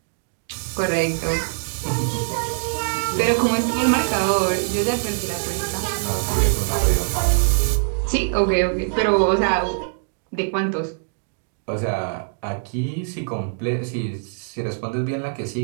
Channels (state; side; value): silent; left; digital silence